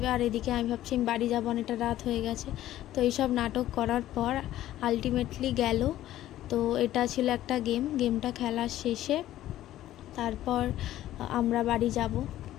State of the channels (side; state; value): right; quieter; 13.8 dB